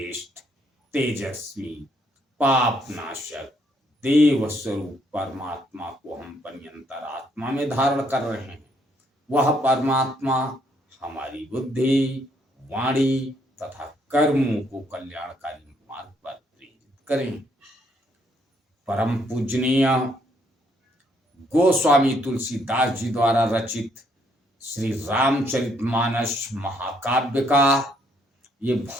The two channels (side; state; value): both; normal; correlation 0.70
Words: तेजस्वी, पाप नाशक, देव स्वरूप परमात्मा को हम पर्यंतर आत्मा में धारण कर रहे हैं। वह परमात्मा हमारी बुद्धि, वाणी तथा कर्मों को कल्याणकारी मार्ग पर प्रेरित करें। परम पूजनीय गोस्वामी तुलसीदास जी द्वारा रचित श्री रामचरितमानस महाकाव्य का ये